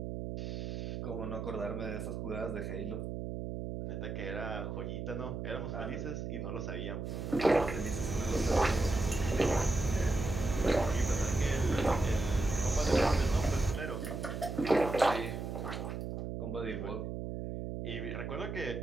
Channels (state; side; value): noise; right; hum, 5 dB below the sound